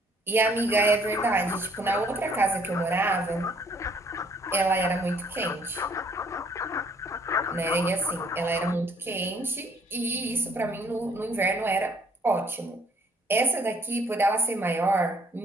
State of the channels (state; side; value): normal; both; correlation 0.62